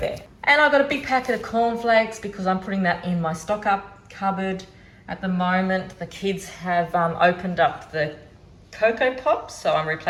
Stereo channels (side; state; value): both; identical; correlation 1.00